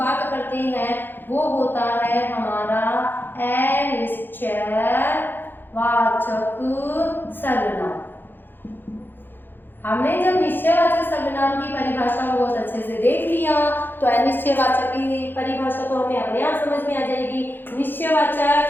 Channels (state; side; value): late; right; 0.096 ms